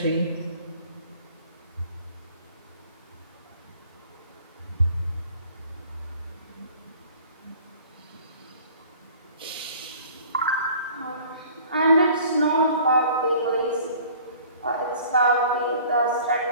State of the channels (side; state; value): both; inverted; correlation -0.50